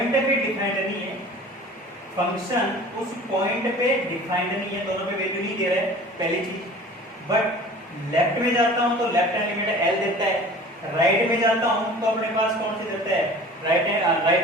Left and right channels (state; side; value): normal; both; correlation 0.43